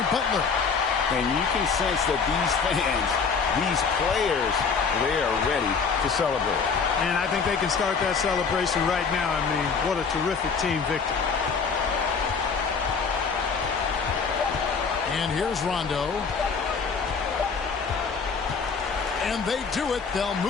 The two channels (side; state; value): right; quieter; 5.4 dB